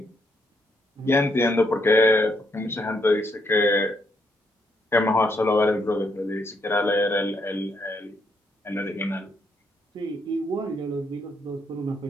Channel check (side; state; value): both; normal; correlation 0.75